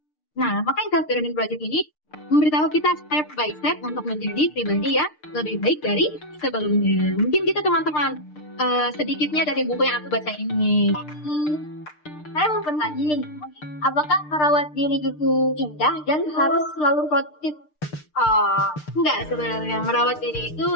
Nah, maka self-learning project ini memberitahu kita step by step untuk menjadi pribadi yang lebih baik dari sebelumnya. Mungkin kita teman-teman sedikitnya dari buku yang aku baca ini. Saya mau bertanya nih, apakah merawat diri itu indah dan harus selalu produktif? Enggak, sebenarnya merawat diri itu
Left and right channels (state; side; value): late; right; 6.6 ms